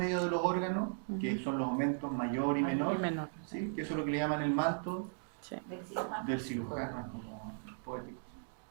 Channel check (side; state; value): left; silent; digital silence